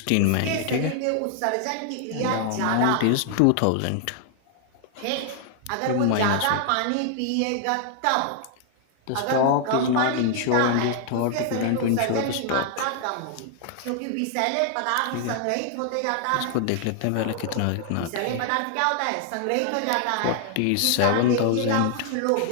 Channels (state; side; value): different; both; correlation 0.00